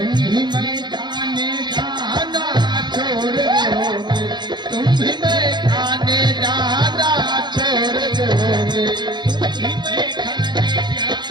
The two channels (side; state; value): left; late; 0.21 ms